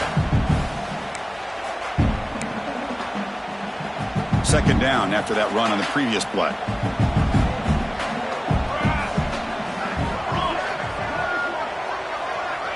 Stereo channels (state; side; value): identical; both; correlation 1.00